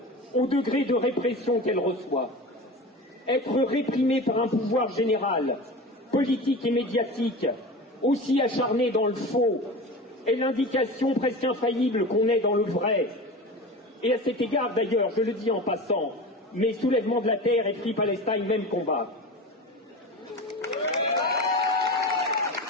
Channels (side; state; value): both; normal; correlation 0.30